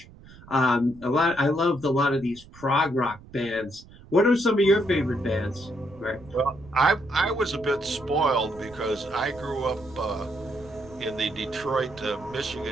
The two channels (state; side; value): noise; right; rumble, 21 dB below the sound